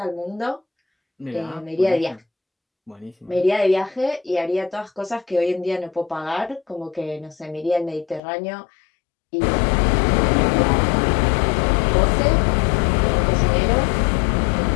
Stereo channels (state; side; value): drops out; right; at 8.2 s